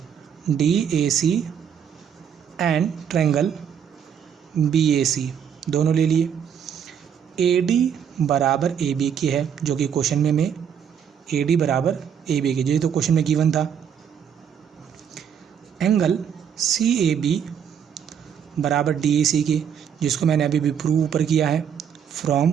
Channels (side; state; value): left; quieter; 8.1 dB